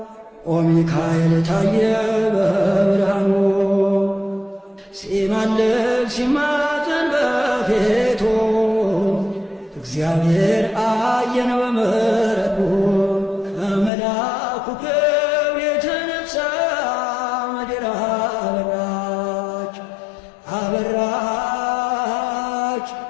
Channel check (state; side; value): drops out; right; at 13.9 s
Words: ኦ ሚካኤል ታየ በብርሃኑ ሲማልድ ሲማፀን በፊቱ እግዚአብሔር አየን በምሕረቱ ከመልአኩ ክብር የተነሳ ምድር አበራች አበራች